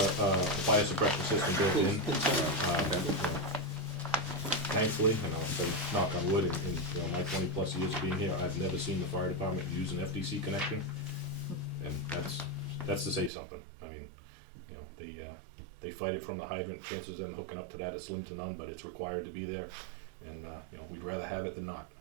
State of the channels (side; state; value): left; drops out; at 13.3 s